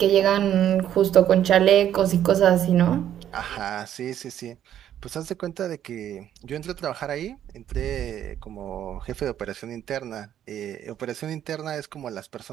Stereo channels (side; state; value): left; quieter; 10.6 dB